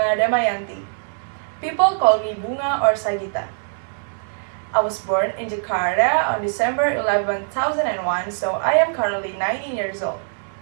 Damayanti. People call me Bunga or Sagita. I was born in Jakarta on December 11, 2001, so I am currently 19 years old.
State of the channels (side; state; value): left; silent; 64 dB below the other